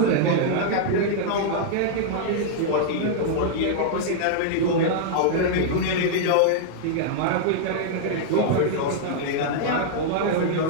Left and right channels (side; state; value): both; different; correlation -0.01